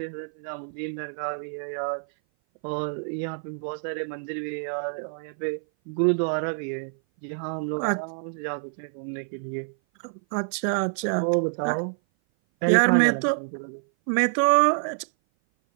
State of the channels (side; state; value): left; silent; 57 dB below the other